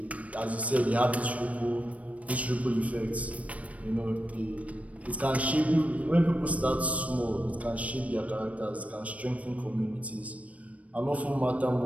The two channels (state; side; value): late; left; 0.066 ms